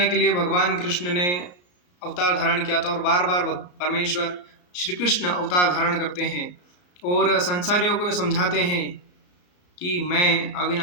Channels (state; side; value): late; right; 34 ms